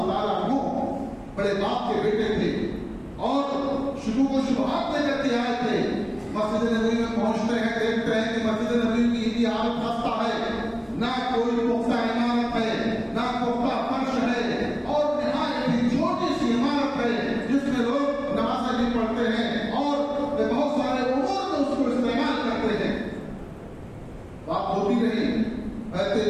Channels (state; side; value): identical; both; correlation 1.00